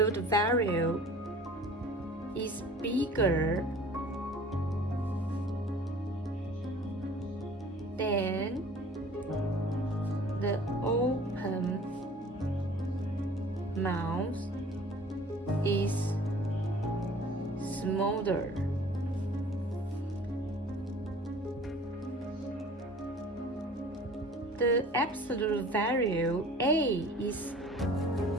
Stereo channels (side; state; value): both; normal; correlation 0.47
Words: value is bigger than the open mouth is smaller. The absolute value A is